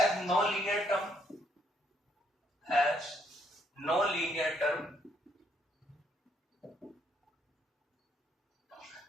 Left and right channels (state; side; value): normal; both; correlation 0.70